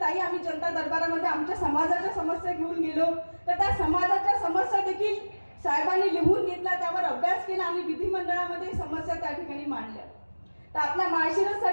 आम्ही जनता दरबारामध्ये आमच्या समाजाच्या समस्या घेऊन गेलो, तर त्या समाजाच्या समस्या देखील साहेबांनी लिहून घेतला, त्यावर अभ्यास केला आणि विधिमंडळामध्ये समस्या त्या ठिकाणी मांडल्या. तर आपल्या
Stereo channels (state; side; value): inverted; both; correlation -1.00